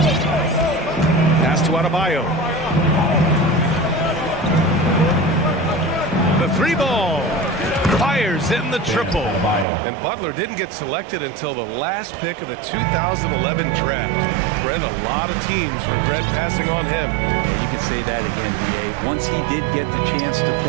Pass to Adebayo. The 3 ball. Fires in the triple. And Butler didn't get selected until the last pick of the 2011 draft. Brent, a lot of teams regret passing on him. Yeah, you can say that again, DA. Once he did get the chance to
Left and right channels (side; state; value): left; drops out; at 9.7 s